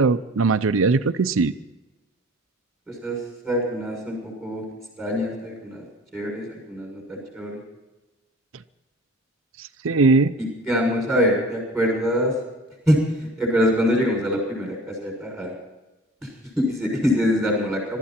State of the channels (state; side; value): normal; both; correlation 0.45